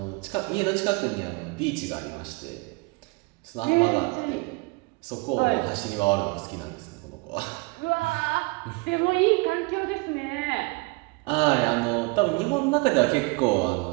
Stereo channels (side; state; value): left; quieter; 27.8 dB